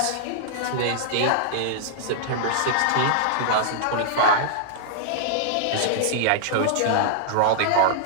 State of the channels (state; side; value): different; both; correlation -0.01